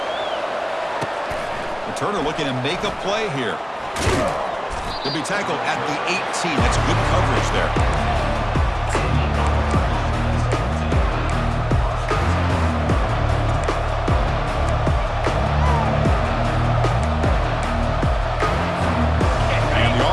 Turner looking to make a play here. He'll be tackled at the 18. That's good coverage there. And the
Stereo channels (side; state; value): both; identical; correlation 1.00